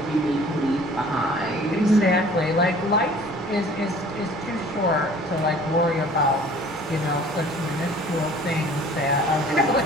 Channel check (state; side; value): normal; both; correlation 0.50